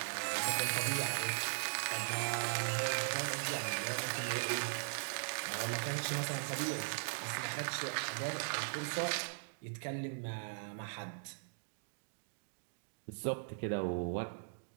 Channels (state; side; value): silent; left; digital silence